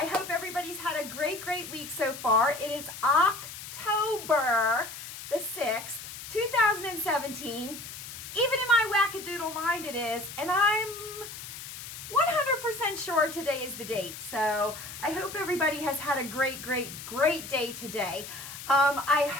hope everybody's had a great week so far. It is October the 6th, 2017. Even in my wackadoodle mind it is, and I'm 100% sure today is the date. So I hope everybody has had a great day today. I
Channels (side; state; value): left; noise; hiss, 11 dB below the sound